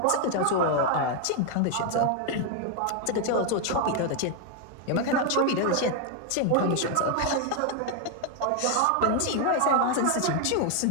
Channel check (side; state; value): both; different; correlation 0.01